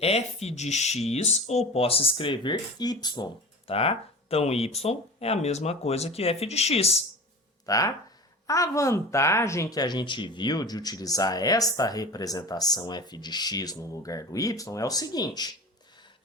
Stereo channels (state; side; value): normal; both; correlation 0.34